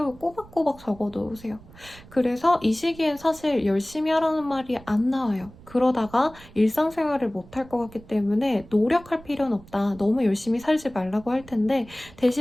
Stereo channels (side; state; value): right; noise; rumble, 21 dB below the sound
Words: 꼬박꼬박 적어놓으세요. 그래서 이 시기엔 사실 열심히 하라는 말이 안 나와요. 그러다가 일상생활을 못할 것 같기 때문에 노력할 필요는 없다. 너무 열심히 살지 말라고 할 텐데